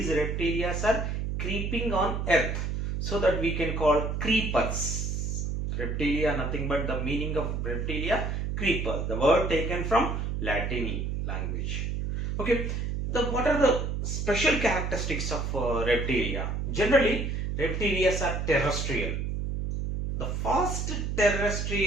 reptilia are creeping on earth, so that we can call creepers. Reptilia, nothing but the meaning of reptilia, creeper, the word taken from Latin language. Okay, what are the special characteristics of reptilia? Generally, reptilia are terrestrial, the first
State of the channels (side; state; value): right; noise; hum, 2 dB below the sound